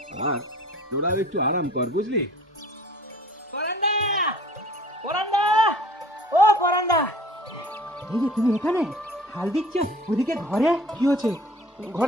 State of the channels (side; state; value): both; normal; correlation 0.47